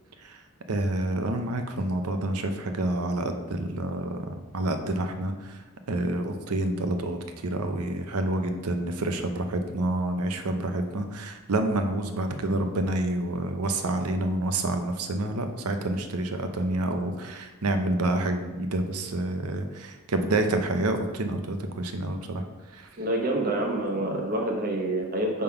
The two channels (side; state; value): both; normal; correlation 0.48